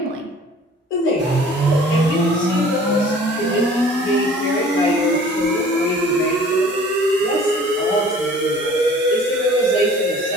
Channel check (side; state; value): both; normal; correlation 0.49